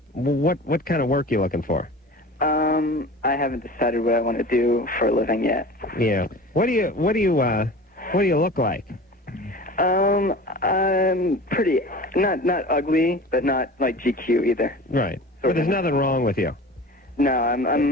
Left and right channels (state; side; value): normal; both; correlation 0.37